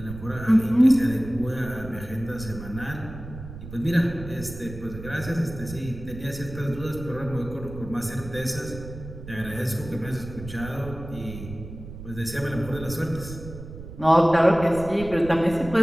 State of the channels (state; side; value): noise; right; rumble, 12 dB below the sound